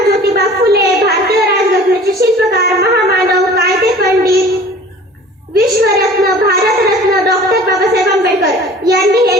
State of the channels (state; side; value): normal; both; correlation 0.46